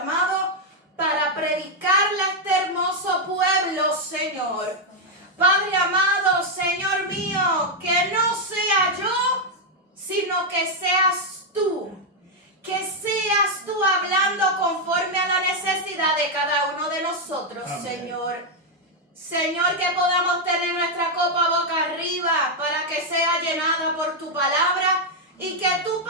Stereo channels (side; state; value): both; normal; correlation 0.00